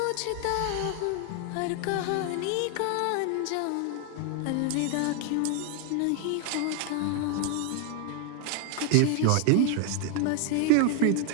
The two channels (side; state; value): both; different; correlation 0.01